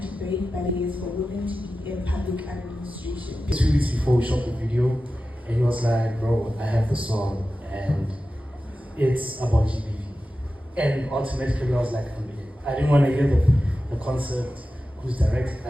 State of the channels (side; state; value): both; normal; correlation 0.93